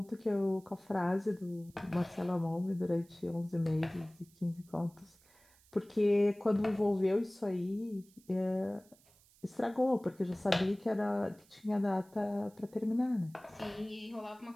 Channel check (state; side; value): noise; right; hiss, 29 dB below the sound